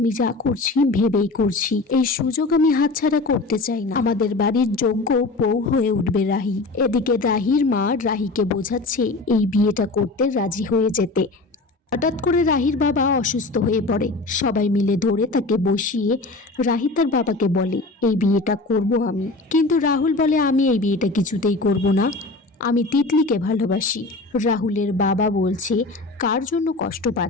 যা করছি ভেবেই করছি, এই সুযোগ আমি হাতছাড়া করতে চাই না, আমাদের বাড়ির যোগ্য বউ হয়ে উঠবে রাহি। এদিকে রাহির মা রাহিকে বোঝাচ্ছে এই বিয়েটা করতে রাজি হয়ে যেতে। হঠাৎ করে রাহির বাবা অসুস্থ হয়ে পড়ে, সবাই মিলে ধরে তাকে বসিয়ে রাহি তার বাবাকে বলে এই বিয়েটা করব আমি। কিন্তু রাহুল বলে আমি এই বিয়েটা কিছুতেই করব না, আমি তিতলিকে ভালোবাসি। রাহুলের বাবা বলছে কার জন্য কষ্ট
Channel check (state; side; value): quieter; right; 3.3 dB